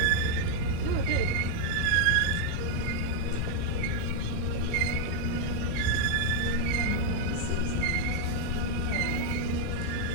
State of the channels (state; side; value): different; both; correlation 0.00